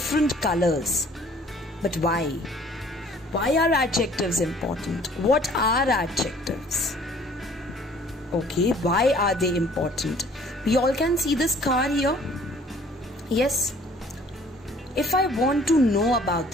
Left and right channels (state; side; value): normal; both; correlation 0.55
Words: colors. But why? Why are adjectives important? What are adjectives? Okay, why are they important? We all can see this car here. Yes. If I want to know about